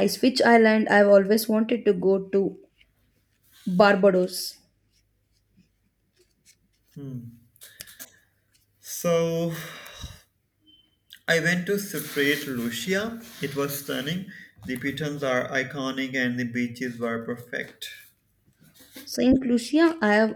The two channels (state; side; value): identical; both; correlation 1.00